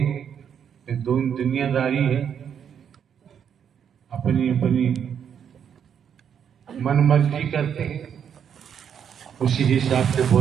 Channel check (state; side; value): quieter; left; 8.1 dB